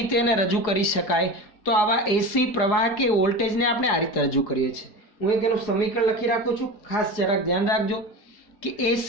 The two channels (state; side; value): late; right; 4.8 ms